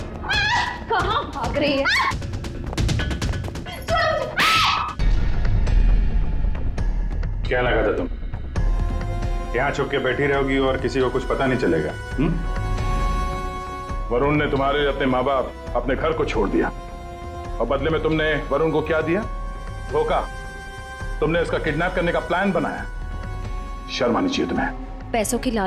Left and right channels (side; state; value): both; identical; correlation 1.00